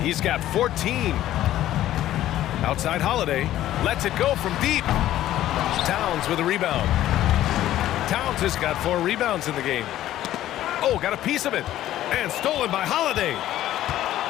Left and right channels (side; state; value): right; quieter; 13.4 dB